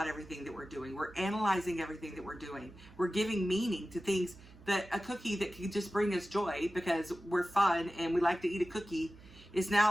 everything that we're doing. We're analyzing everything that we're doing. We're giving meaning to things that a cookie that could just bring us joy because we're fun and we like to eat a cookie is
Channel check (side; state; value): right; noise; hum, 21 dB below the sound